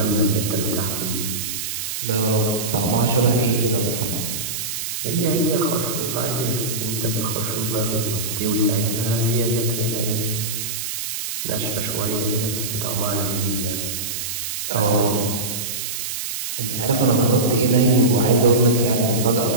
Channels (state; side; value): noise; right; hiss, 4 dB below the sound